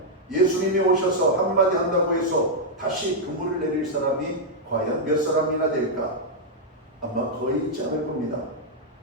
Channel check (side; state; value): both; normal; correlation -0.04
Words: 예수님이 오셔서 한마디 한다고 해서 다시 그물을 내릴 사람이 과연 몇 사람이나 될까? 아마 거의 있지 않을 겁니다.